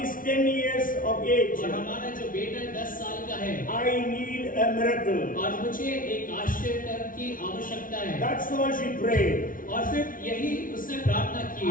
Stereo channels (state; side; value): late; right; 0.39 ms